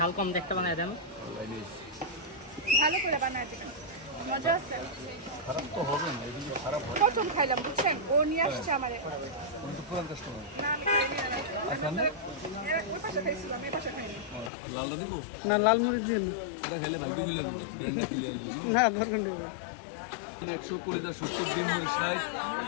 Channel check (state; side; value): drops out; right; at 14.5 s